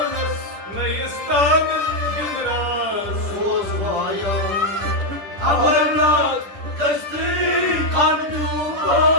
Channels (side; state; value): left; late; 10 ms